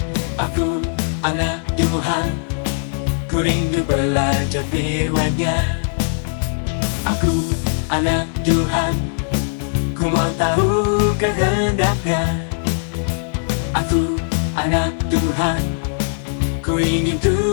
Aku anak Tuhan, ku rindu belajar firman-Nya. Aku anak Tuhan, ku mau tahu kehendak-Nya. Aku anak Tuhan, ku ingin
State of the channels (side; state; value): right; silent; 61 dB below the other